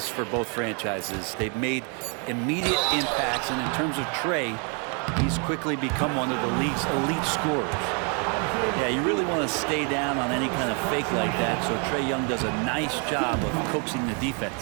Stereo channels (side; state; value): left; quieter; 37.4 dB